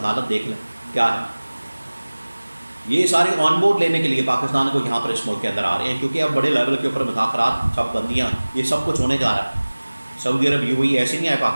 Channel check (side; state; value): both; inverted; correlation -1.00